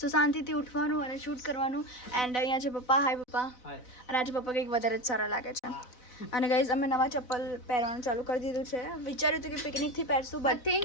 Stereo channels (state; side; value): late; right; 4.0 ms